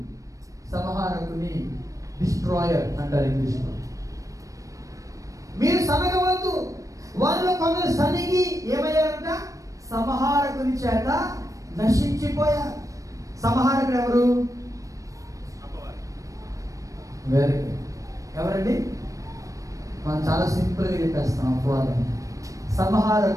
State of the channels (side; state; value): left; late; 0.16 ms